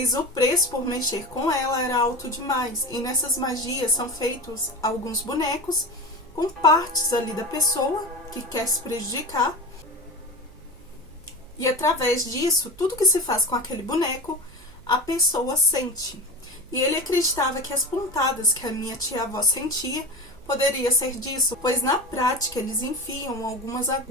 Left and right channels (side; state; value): right; noise; hum, 24 dB below the sound